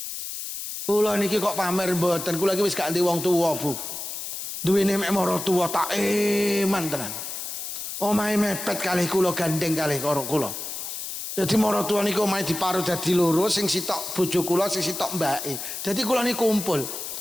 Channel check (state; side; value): noise; left; hiss, 7 dB below the sound